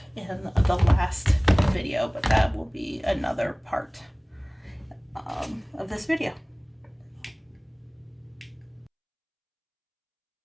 in the last video, but that will be another part of this video.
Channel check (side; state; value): both; identical; correlation 1.00